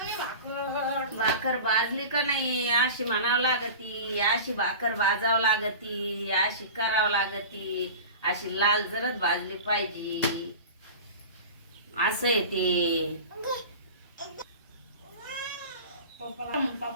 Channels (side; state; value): both; inverted; correlation -0.34